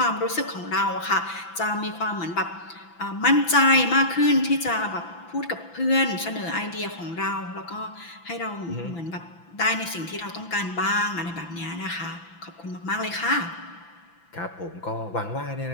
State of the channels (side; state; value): right; late; 6.0 ms